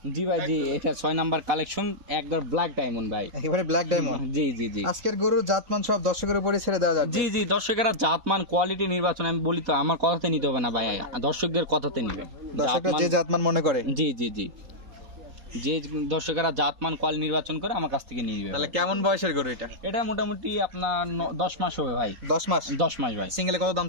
জি ভাই জি, এটা 6 নাম্বার কালেকশন, একদম ব্ল্যাক ডায়মন্ড ভাই। একেবারে ব্ল্যাক ডায়মন্ড। জি জি জি। আজকের গরুর জাতমান সব দর্শকের উপরে ছেড়ে দেওয়া যাবে। জি জি, দর্শকেরা জাতমান কোয়ালিটি নির্বাচন আমি বলি তো, আমার কথাতে নিতে হবে না ভাই, দর্শকদের কথাতে নিবে। দর্শকরা যে জাতমান মনে করে। জি জি জি, যে দর্শকেরা জাতমান কোয়াল নির্বাচন করে আমার কাছ থেকে নিয়ে নিবে। তাহলে কেমন বয়সের গরু এটা? এটা মোটামুটি আপনার 10 মাস হবে ভাই। 10 মাস। 10 মাস ভাই। সিঙ্গেলে কত দাম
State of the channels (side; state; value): left; late; 3.8 ms